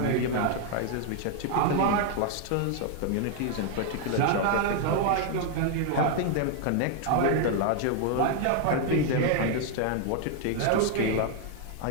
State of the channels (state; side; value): different; both; correlation 0.00